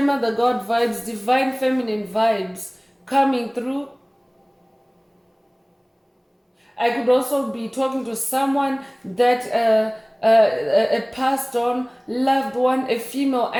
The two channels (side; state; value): both; identical; correlation 1.00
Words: God vibes, divine feminine vibes coming through. I could also be talking to someone that a passed on loved one, a female